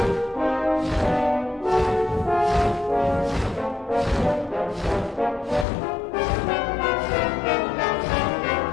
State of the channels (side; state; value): right; drops out; at 5.7 s